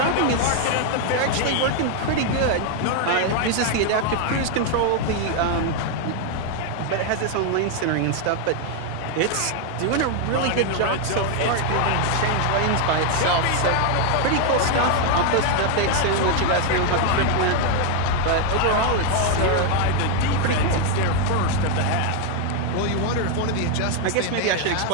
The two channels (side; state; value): both; different; correlation 0.01